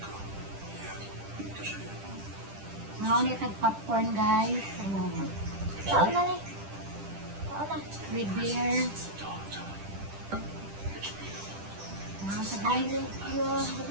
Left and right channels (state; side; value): late; left; 10 ms